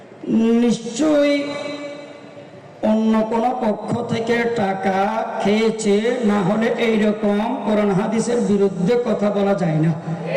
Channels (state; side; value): identical; both; correlation 1.00